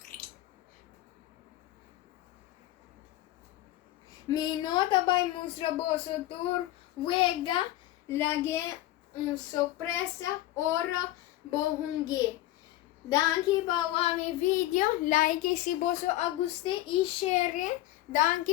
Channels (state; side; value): quieter; right; 15.6 dB